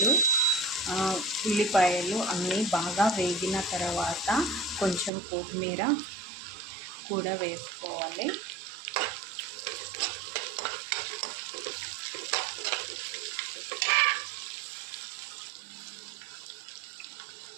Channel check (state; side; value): drops out; left; at 5.1 s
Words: ఉల్లిపాయలు అన్నీ బాగా వేగిన తర్వాత కొంచెం కొత్తిమీర కూడా వేసుకోవాలి.